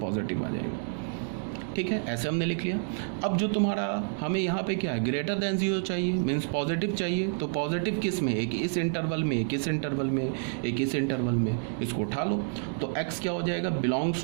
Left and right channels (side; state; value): left; silent; digital silence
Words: आ जाएगा। ठीक है, ऐसे हमने लिख लिया। अब जो तुम्हारा हमें यहाँ पे क्या है, ग्रेटर देन 0 चाहिए, मीन्स पॉजिटिव चाहिए। तो पॉजिटिव किस में? एक इस इंटरवल में, एक इस इंटरवल में, एक इस इंटरवल में, इसको उठा लो। तो x क्या हो जाएगा? Belongs